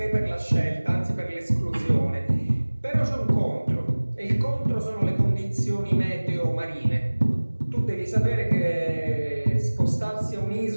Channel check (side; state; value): both; inverted; correlation -1.00